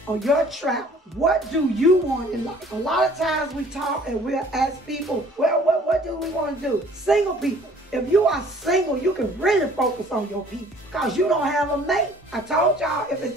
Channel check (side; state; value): both; normal; correlation 0.54